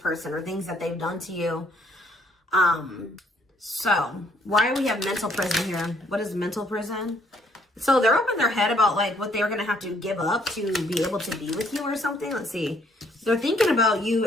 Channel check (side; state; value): both; normal; correlation 0.65